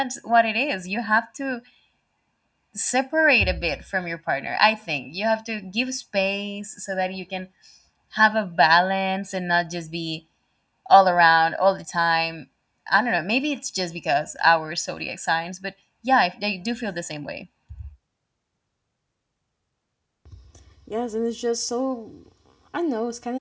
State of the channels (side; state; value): both; identical; correlation 1.00